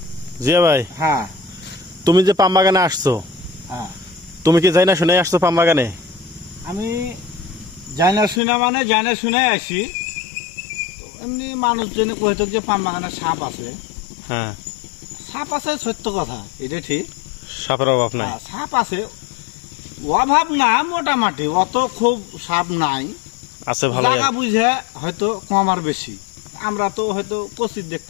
জিয়া ভাই, হ্যাঁ তুমি যে পাম বাগানে আসছো, হ্যাঁ তুমি কি যাই না শুনে আসছো পাম বাগানে? আমি যাই না শুনে মানে যাই না শুনে আসি। এমনি মানুষ জেনে কইতো যে পাম বাগানে সাপ আছে। হ্যাঁ, সাপ আছে সত্য কথা, এটা ঠিক। সাপের অভাব নাই। সাপ আছে, অভাব না, মোটামুটি অত খুব সাপ নাই। আছে ভালো। জায়গা বুঝে হয়তো কম আর বেশি, আমরা তো হয়তো কচিত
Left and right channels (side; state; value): right; drops out; at 8.4 s